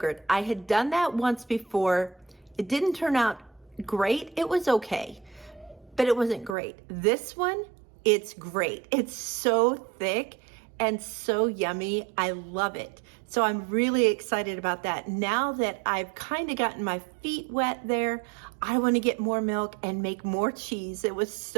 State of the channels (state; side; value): drops out; left; at 6.6 s